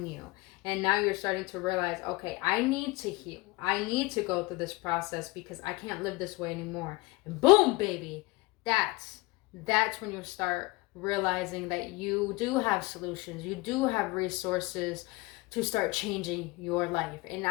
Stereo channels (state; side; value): quieter; right; 22.7 dB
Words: you. And now you're starting to realize, okay, I need to heal. I need to go through this process because I can't live this way anymore. And boom, baby, that's when you start realizing that you do have solutions. You do have resources to start changing your life. And